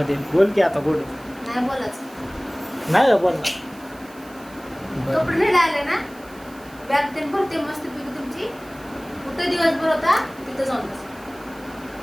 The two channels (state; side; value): noise; right; hiss, 24 dB below the sound